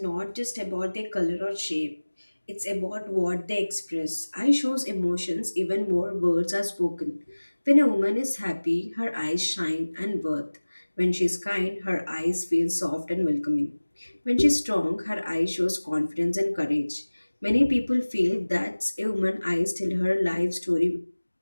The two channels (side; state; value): both; inverted; correlation -1.00